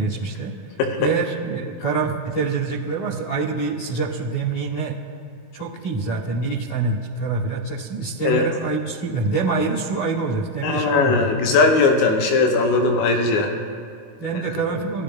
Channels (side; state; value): right; late; 19 ms